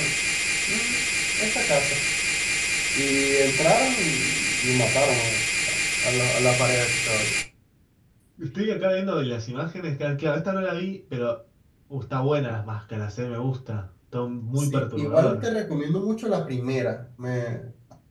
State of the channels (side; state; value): both; identical; correlation 1.00